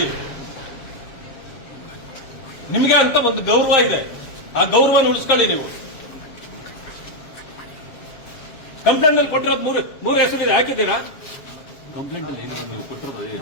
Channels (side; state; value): right; late; 7.3 ms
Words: ನಿಮಗೆ ಅಂತ ಒಂದು ಗೌರವ ಇದೆ, ಆ ಗೌರವನ ಉಳಿಸ್ಕೊಳ್ಳಿ ನೀವು. ಕಂಪ್ಲೇಂಟ್ ಅಲ್ಲಿ ಕೊಟ್ಟಿರೋದು ಮೂರು ಹೆಸರಿದೆ, ಹಾಕಿದ್ದೀರಾ? ಕಂಪ್ಲೇಂಟ್ ಅಲ್ಲಿ ಏನಿದೆ ನೀವು ಕೊಟ್ಟಿರೋದು ಅದೇ